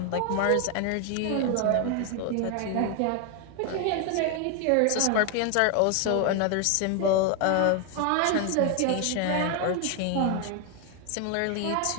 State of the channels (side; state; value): both; different; correlation 0.01